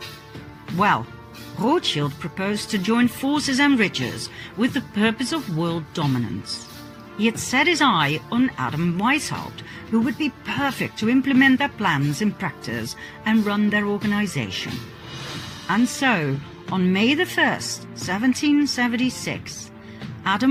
Well, Rothschild proposed to join forces and riches with the purpose of world dominance. He had set his eye on Adam Weishaupt, who would be perfect to implement their plans in practice and run their organization. And so, on May the 1st, 1776,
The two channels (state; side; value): identical; both; correlation 1.00